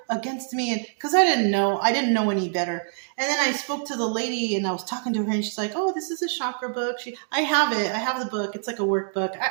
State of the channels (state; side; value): silent; left; digital silence